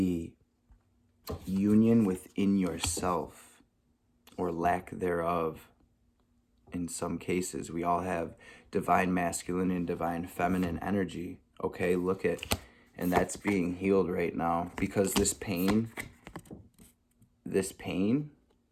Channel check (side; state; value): both; identical; correlation 1.00